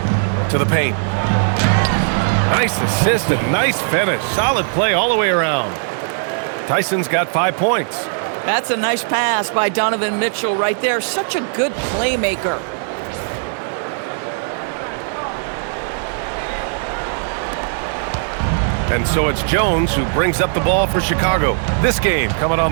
To the paint. Nice assist and nice finish. Solid play all the way around. Tyson's got 5 points. That's a nice pass by Donovan Mitchell right there. Such a good playmaker. And so it's Jones who brings up the ball for Chicago. This game coming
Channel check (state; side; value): silent; left; digital silence